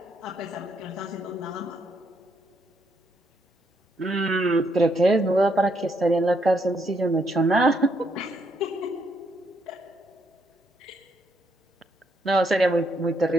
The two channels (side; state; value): both; normal; correlation 0.75